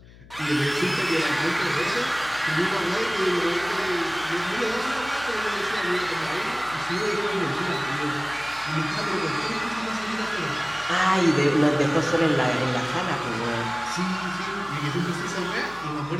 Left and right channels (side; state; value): left; noise; hum, 21 dB below the sound